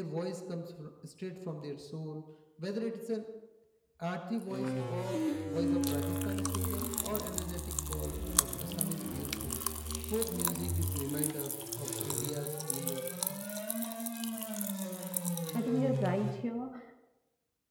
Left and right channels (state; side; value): identical; both; correlation 1.00